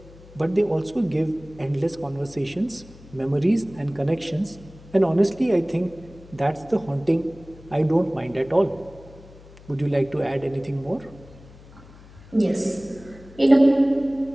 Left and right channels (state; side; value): noise; left; hum, 21 dB below the sound